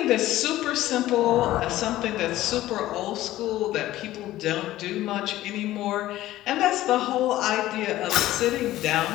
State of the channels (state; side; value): quieter; right; 15.2 dB